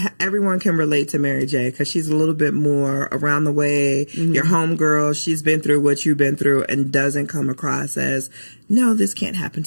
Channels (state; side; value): inverted; both; correlation -1.00